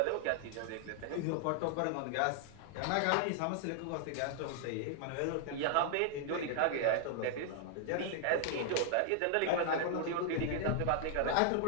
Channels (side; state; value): both; different; correlation 0.00